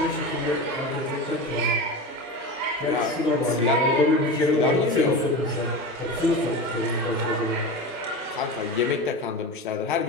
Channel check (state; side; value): normal; both; correlation 0.26